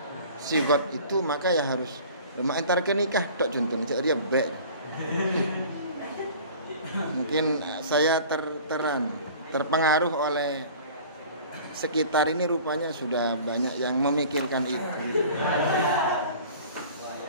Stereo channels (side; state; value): both; inverted; correlation -0.44